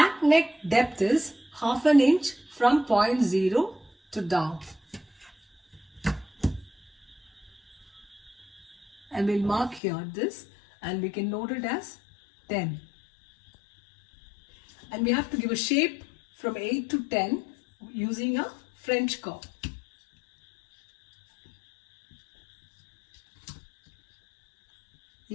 neck depth is half an inch from point 0 to down. And we'll mark here this, and we can note it as 10. And we have to give a shape from 8 to 10 using a French curve.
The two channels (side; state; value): right; drops out; at 9.8 s